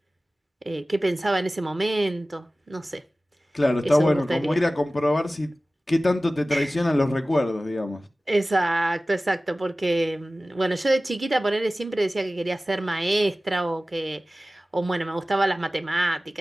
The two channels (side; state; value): both; normal; correlation 0.97